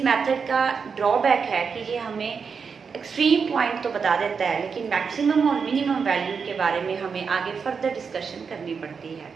मेथड का ड्रॉबैक है कि ये हमें एक्सट्रीम पॉइंट तो बता देता है, लेकिन मैक्सिमम और मिनिमम वैल्यू के बारे में हमें आगे फर्दर डिस्कशन करनी पड़ती है।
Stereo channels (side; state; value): left; quieter; 5.8 dB